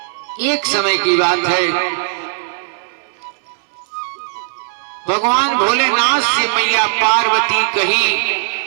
एक समय की बात है, भगवान भोलेनाथ से मैया पार्वती कही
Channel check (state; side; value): silent; left; digital silence